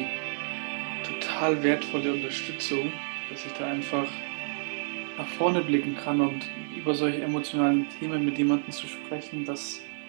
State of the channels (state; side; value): silent; left; digital silence